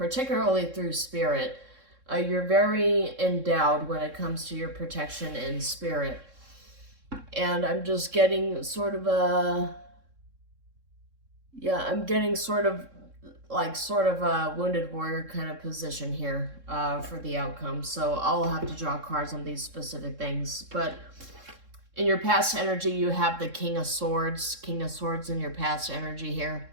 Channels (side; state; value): left; late; 3.7 ms